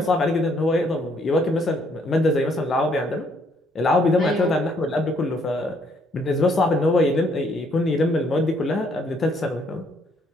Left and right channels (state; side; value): normal; both; correlation 0.68